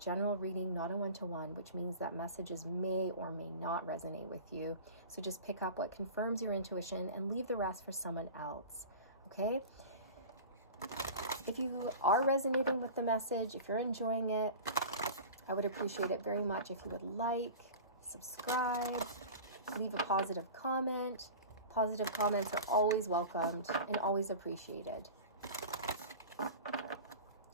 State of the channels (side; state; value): both; inverted; correlation -0.35